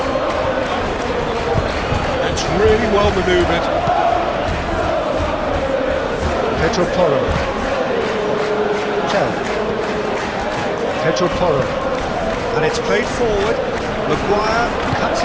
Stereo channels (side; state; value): both; identical; correlation 1.00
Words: Really well manoeuvred. Pedro Porro. Tell. Pedro Porro. And it's played forward. Maguire cuts